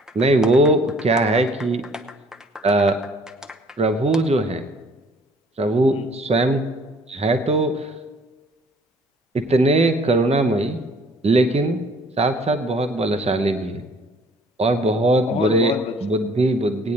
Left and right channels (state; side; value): normal; both; correlation 0.56